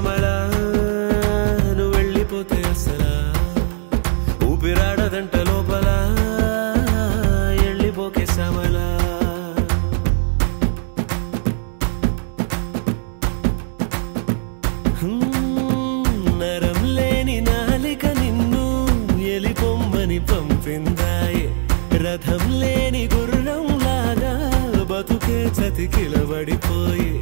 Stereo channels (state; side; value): silent; left; digital silence